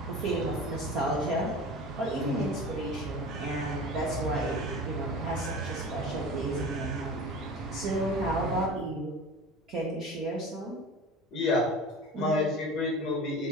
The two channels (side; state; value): both; normal; correlation 0.36